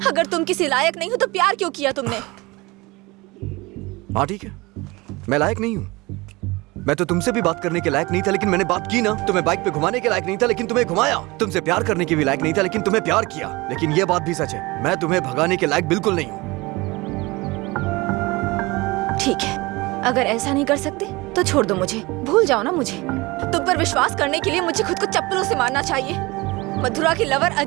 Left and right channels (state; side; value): quieter; left; 22.8 dB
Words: अगर तुम किसी लायक नहीं हो तो प्यार क्यों किया तुमने? हाँ ठीक है, मैं लायक नहीं हूँ, मैं तो तुमसे भी बात करने के लायक नहीं था, लेकिन मैंने बात की ना। तुम्हें बाइक पे घुमाने के लायक नहीं था, लेकिन तुम्हें घुमाया। तुमसे प्यार करने के भी लायक नहीं था, लेकिन तुम्हें प्यार किया। लेकिन ये बात भी सच है, मैं तुम्हें भगाने के लायक बिल्कुल नहीं हूँ। ठीक है, अगर ऐसा नहीं कर सकते तो छोड़ दो मुझे, भूल जाओ ना मुझे। तुम पर विश्वास करने के लिए मुझे खुद को चप्पलों से मारना चाहिए। मधुरा की लवर